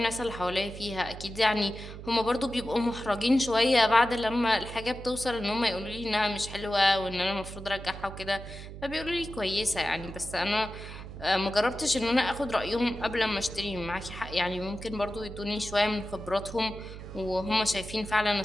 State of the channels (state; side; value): noise; right; hum, 12 dB below the sound